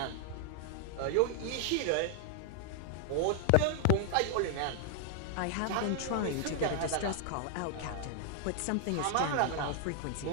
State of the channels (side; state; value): both; different; correlation 0.00